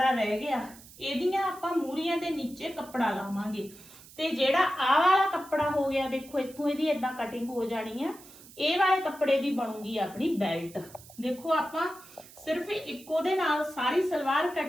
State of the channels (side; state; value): right; noise; hiss, 20 dB below the sound